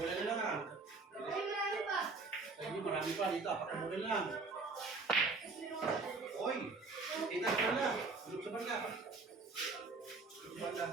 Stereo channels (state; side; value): quieter; left; 3.9 dB